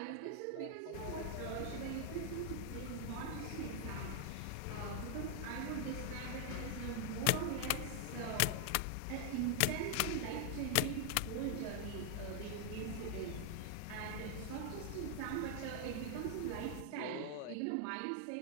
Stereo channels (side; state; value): both; different; correlation 0.00